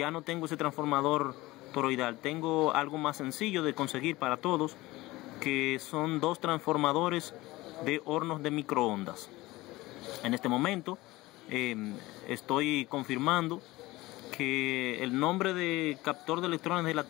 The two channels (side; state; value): right; quieter; 19.4 dB